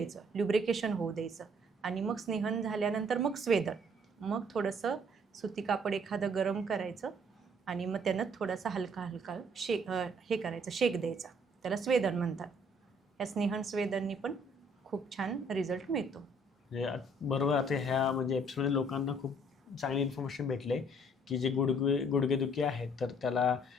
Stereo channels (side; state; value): both; normal; correlation 0.62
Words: ल्युब्रिकेशन होऊ द्यायचं आणि मग स्नेहन झाल्यानंतर मग स्वेदन. मग थोडंसं सुती कापड एखादं गरम करायचं आणि मग त्यानं थोडासा हलका शेक करायचं, शेक द्यायचा. त्याला स्वेदन म्हणतात. या स्नेहन स्वेदननी पण खूप छान रिझल्ट मिळतो. बरोबर. आता ह्या म्हणजे एपिसोडमध्ये लोकांना खूप चांगली इन्फॉर्मेशन भेटले की जे गुडघेदुखी आहे तर त्याला